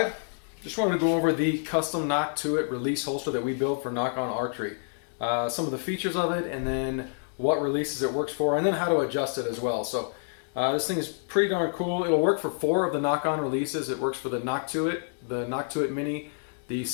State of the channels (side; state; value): right; silent; digital silence